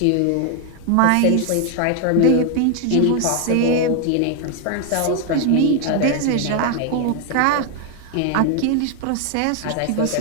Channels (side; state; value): both; different; correlation 0.00